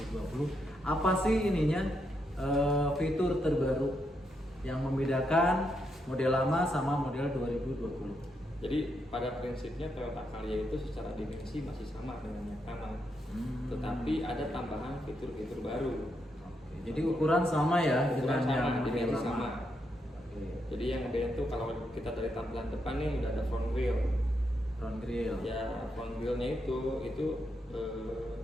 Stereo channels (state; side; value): normal; both; correlation 0.81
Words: Apa sih ininya, fitur terbaru yang membedakan model lama sama model 2020? Jadi pada prinsipnya Toyota Calya itu secara dimensi masih sama dengan yang lama, tetapi ada tambahan fitur-fitur baru. Oke, jadi ukuran sama ya Ukuran dengan sama, yang model dimensi lama. sama. Oke, Jadi yang beda itu kalau kita dari tampilan depan nih udah ada front wheel. front grille. Ya front wheelnya itu